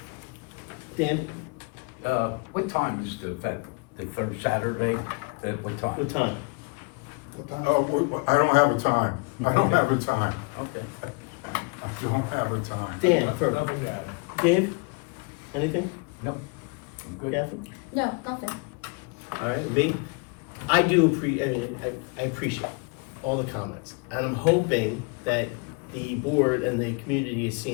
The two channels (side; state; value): right; quieter; 31.9 dB